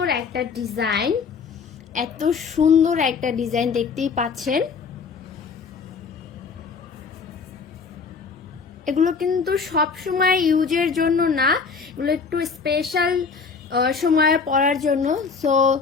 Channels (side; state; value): right; quieter; 5.3 dB